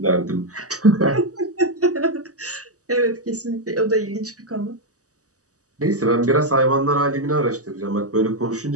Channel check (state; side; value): late; left; 0.66 ms